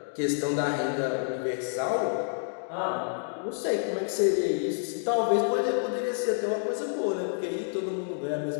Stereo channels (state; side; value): silent; right; digital silence